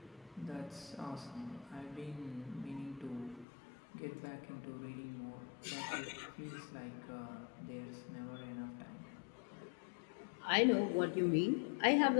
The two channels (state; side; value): drops out; right; at 3.5 s